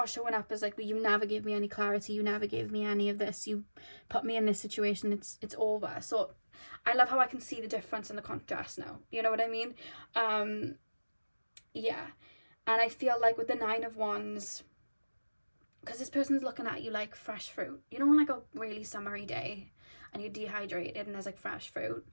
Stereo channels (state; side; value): inverted; both; correlation -1.00